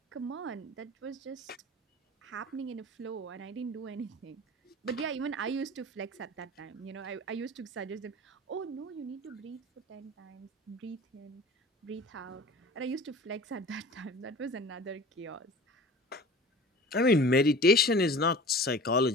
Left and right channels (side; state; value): both; normal; correlation 0.40